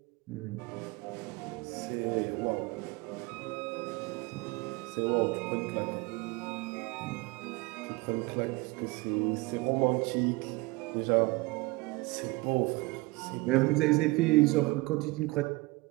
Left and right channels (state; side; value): quieter; left; 23.9 dB